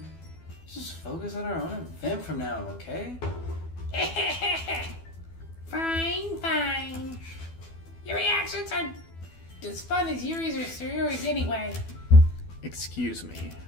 Let's just focus on our own event from now, okay? Fine. Your reactions are as fun as Yuri's or Sayori's anyway. Excuse me.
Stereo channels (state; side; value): late; right; 12 ms